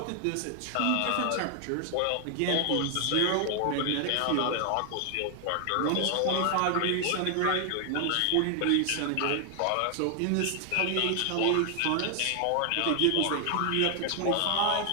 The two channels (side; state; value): both; different; correlation 0.00